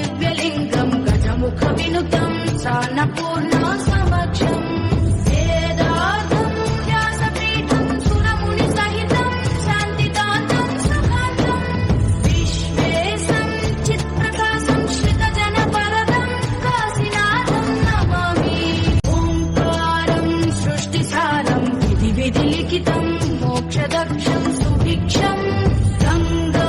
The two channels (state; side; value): identical; both; correlation 1.00